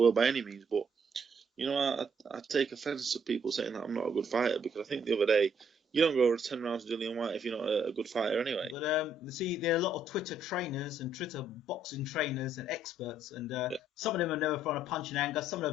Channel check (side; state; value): both; normal; correlation 0.69